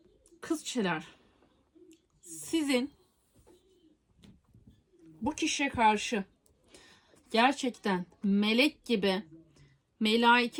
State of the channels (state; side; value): identical; both; correlation 1.00